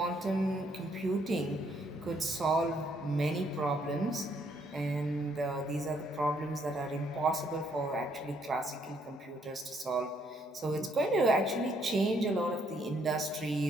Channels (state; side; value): normal; both; correlation 0.70